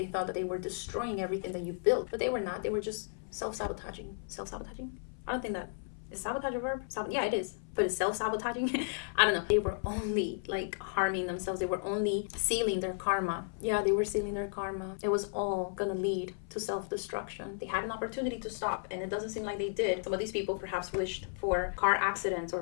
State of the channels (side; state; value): right; silent; 55 dB below the other